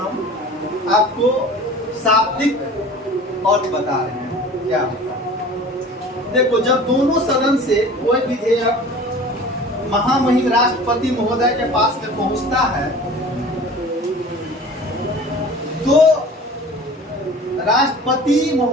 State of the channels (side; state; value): both; normal; correlation 0.42